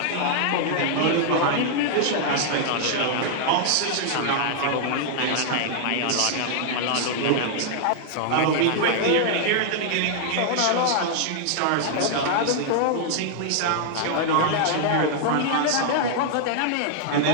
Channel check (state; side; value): different; both; correlation 0.00